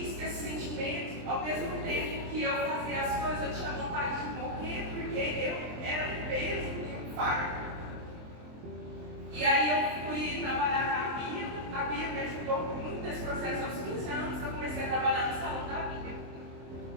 esse sentimento, ao mesmo tempo que eu fazia as coisas, eu tinha vontade de morrer, porque eu era um peso e um fardo. E aí eu fui trabalhar com a Bia me ajudou muito nesse processo. Aos 15 anos eu comecei a trabalhar no salão da Bia.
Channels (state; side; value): late; left; 23 ms